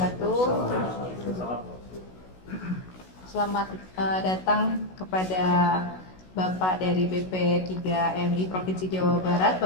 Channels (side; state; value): right; late; 16 ms